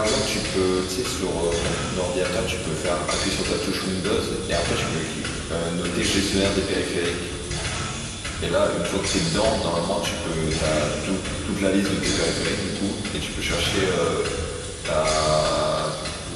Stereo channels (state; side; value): identical; both; correlation 1.00